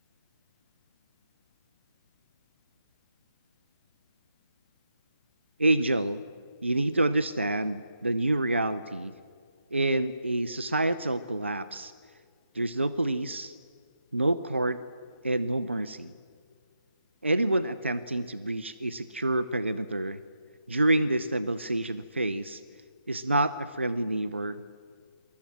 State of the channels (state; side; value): inverted; both; correlation -0.83